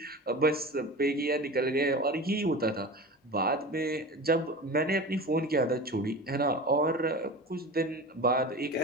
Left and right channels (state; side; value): normal; both; correlation 0.32